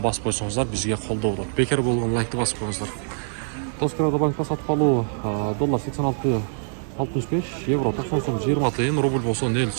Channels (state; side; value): silent; left; digital silence